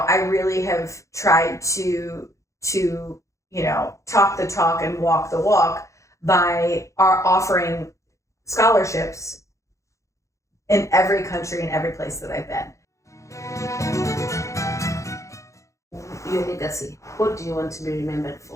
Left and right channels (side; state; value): right; late; 0.15 ms